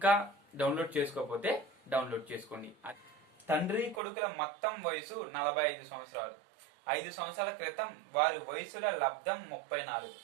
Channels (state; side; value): drops out; left; at 4.0 s